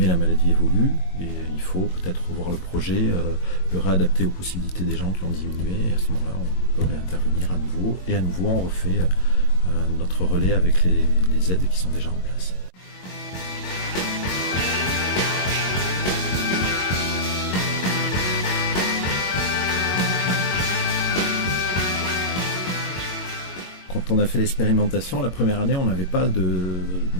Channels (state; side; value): late; right; 22 ms